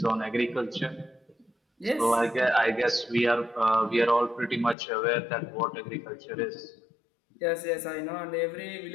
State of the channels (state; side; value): drops out; right; at 4.8 s